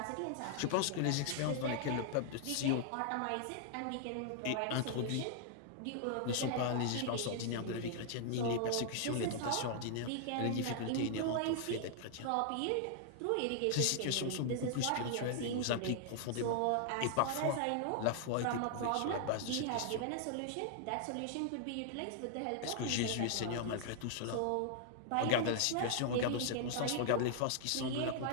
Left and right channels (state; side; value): different; both; correlation -0.01